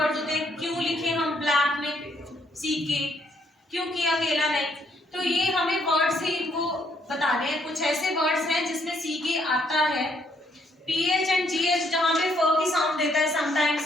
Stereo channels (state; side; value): normal; both; correlation 0.70